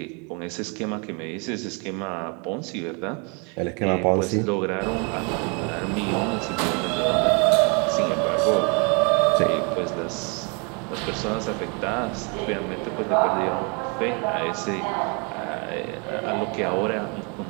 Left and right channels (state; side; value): quieter; left; 33.7 dB